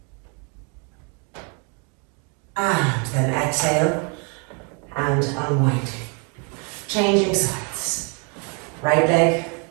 And then exhale and unwinding. Changing sides. Right leg.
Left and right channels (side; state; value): left; quieter; 35.6 dB